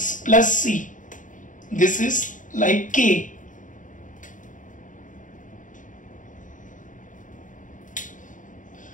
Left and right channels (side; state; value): right; late; 0.38 ms